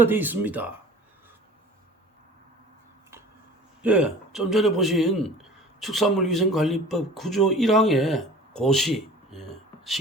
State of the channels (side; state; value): both; normal; correlation 0.43